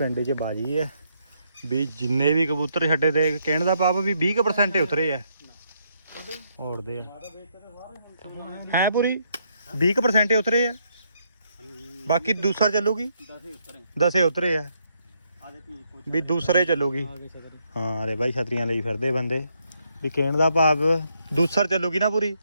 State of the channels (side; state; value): both; inverted; correlation -0.75